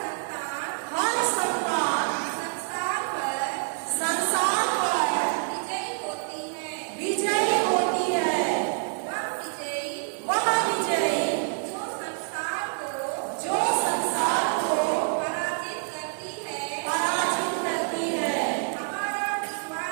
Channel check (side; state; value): left; silent; 56 dB below the other